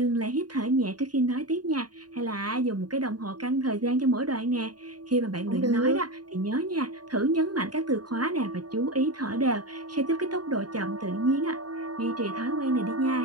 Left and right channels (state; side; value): late; left; 0.70 ms